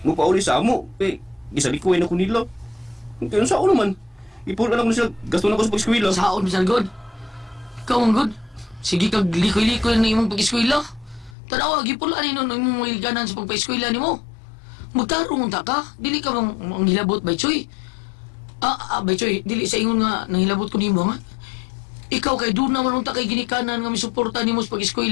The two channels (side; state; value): right; drops out; at 11.4 s